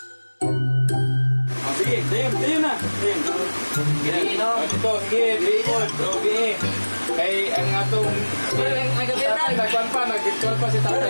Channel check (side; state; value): both; inverted; correlation -1.00